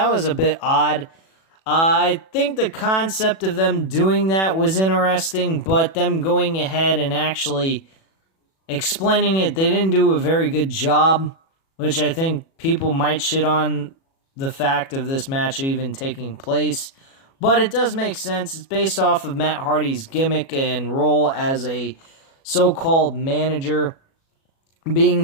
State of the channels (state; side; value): late; right; 37 ms